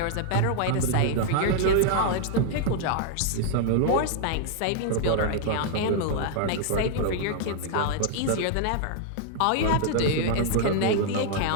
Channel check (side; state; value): both; different; correlation -0.01